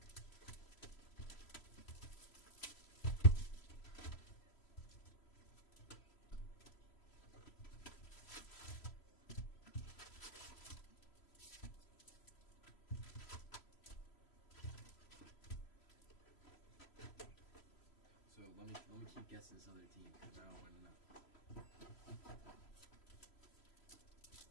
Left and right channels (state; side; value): late; right; 3.0 ms